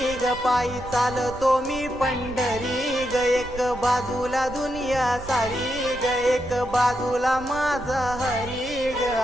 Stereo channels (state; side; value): noise; right; rumble, 14 dB below the sound